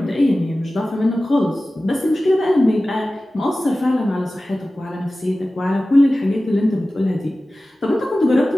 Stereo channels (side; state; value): both; normal; correlation 0.96